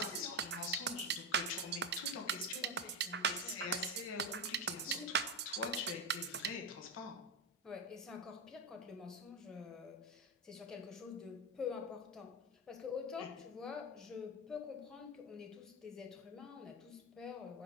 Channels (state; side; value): normal; both; correlation 0.12